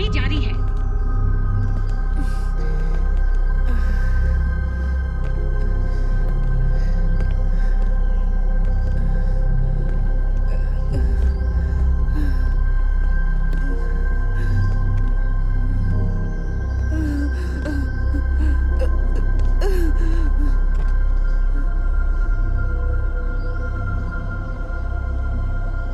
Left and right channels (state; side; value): identical; both; correlation 1.00